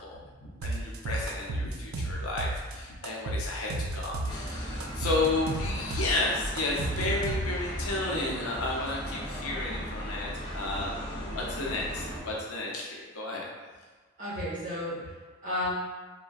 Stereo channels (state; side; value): normal; both; correlation 0.32